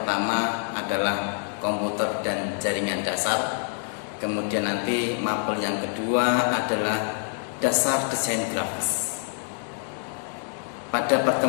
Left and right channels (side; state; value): right; silent; 61 dB below the other